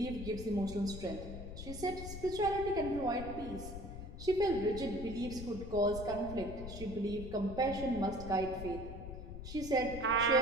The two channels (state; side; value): noise; left; rumble, 9 dB below the sound